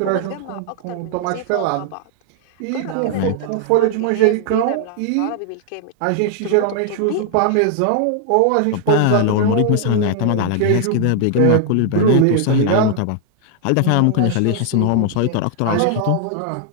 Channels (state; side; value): different; both; correlation 0.00